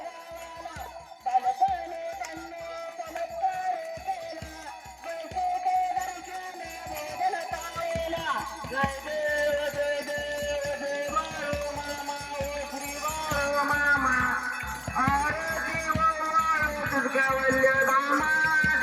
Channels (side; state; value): both; identical; correlation 1.00